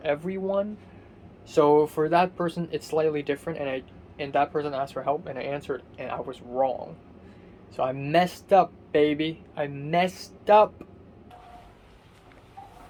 everyone. So for that person, it's slightly different, and that person asked for help, and I answered, and I was wrong. So I messed up, baby. I messed up.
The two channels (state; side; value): identical; both; correlation 1.00